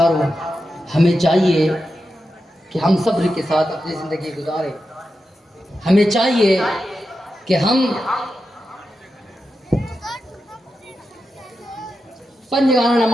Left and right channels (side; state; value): both; normal; correlation 0.89